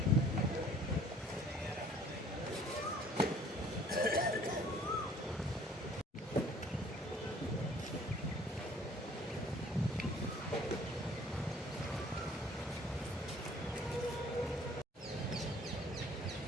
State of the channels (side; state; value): both; normal; correlation 0.55